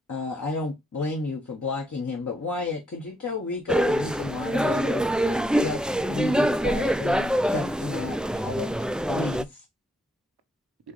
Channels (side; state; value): both; normal; correlation 0.77